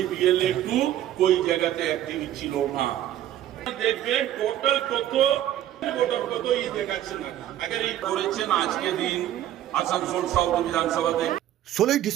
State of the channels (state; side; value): quieter; left; 12.3 dB